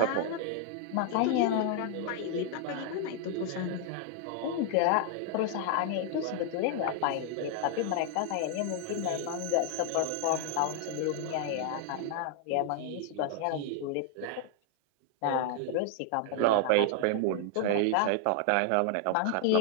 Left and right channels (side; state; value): both; different; correlation 0.00